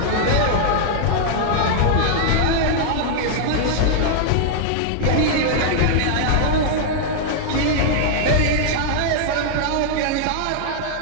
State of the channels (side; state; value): both; different; correlation -0.01